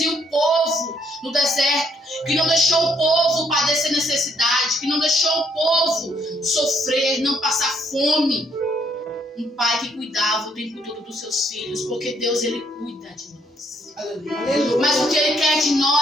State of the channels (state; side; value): normal; both; correlation 0.70